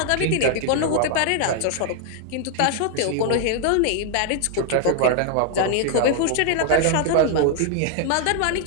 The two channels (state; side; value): different; both; correlation 0.00